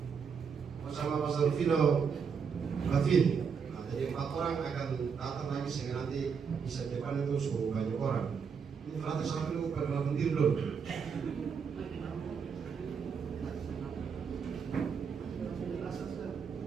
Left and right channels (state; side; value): quieter; left; 6.3 dB